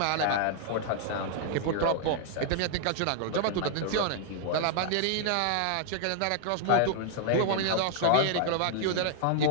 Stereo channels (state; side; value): different; both; correlation -0.01